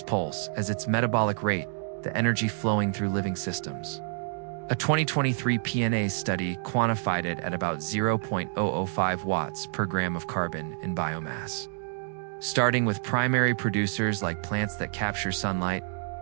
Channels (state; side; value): silent; left; digital silence